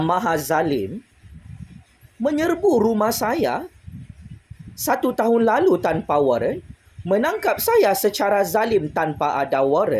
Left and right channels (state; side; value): identical; both; correlation 1.00